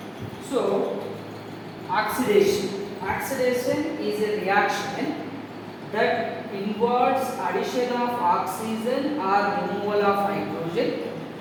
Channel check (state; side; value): identical; both; correlation 1.00